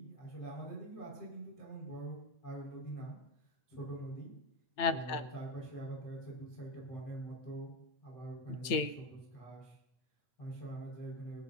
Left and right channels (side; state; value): right; late; 8.8 ms